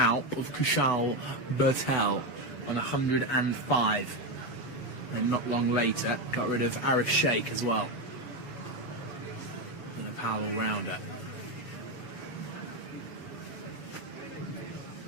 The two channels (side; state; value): right; late; 7.0 ms